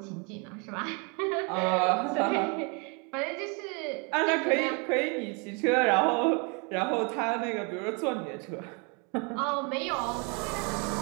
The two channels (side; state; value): left; quieter; 32.9 dB